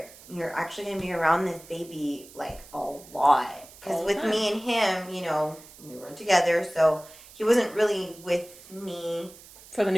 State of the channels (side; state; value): right; noise; hiss, 20 dB below the sound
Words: you're actually going to be around this baby, like, a lot. Because with me and him, you know, we weren't together, so he wasn't really with me. For the